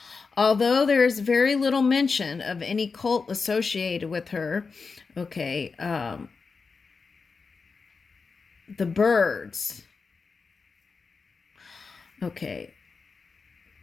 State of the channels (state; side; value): quieter; right; 4.8 dB